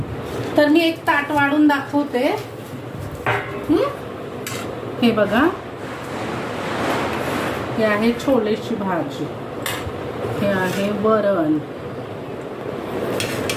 तर मी एक ताट वाढून दाखवते. हे बघा, हे आहे छोलेची भाजी, हे आहे वरण,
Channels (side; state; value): both; identical; correlation 1.00